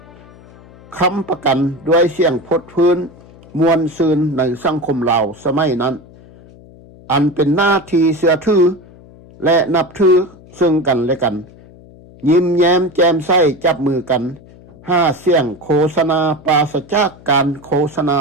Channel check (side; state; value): left; noise; hum, 23 dB below the sound